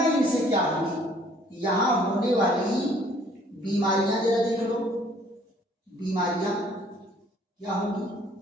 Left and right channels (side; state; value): both; normal; correlation 0.59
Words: इनसे क्या होंगी, यहां होने वाली बीमारियां जरा देख लो, बीमारियां क्या होंगी।